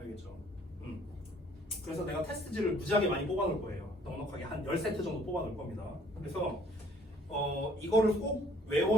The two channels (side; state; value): both; normal; correlation 0.59